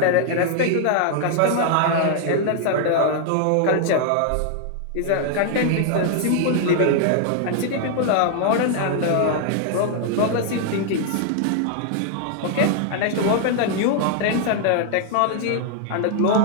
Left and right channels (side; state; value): both; different; correlation 0.00